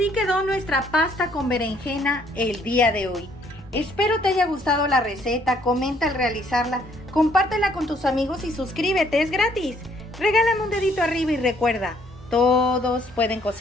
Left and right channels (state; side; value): normal; both; correlation 0.65